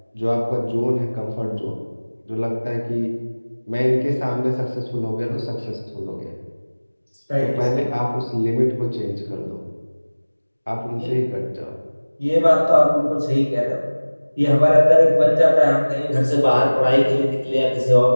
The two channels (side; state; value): both; inverted; correlation -1.00